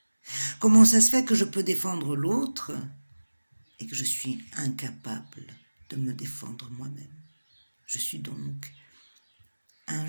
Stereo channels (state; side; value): inverted; both; correlation -1.00